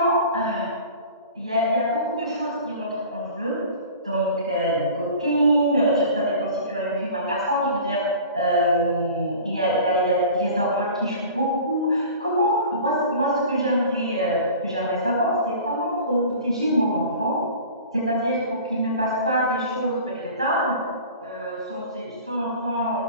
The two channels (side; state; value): both; inverted; correlation -0.41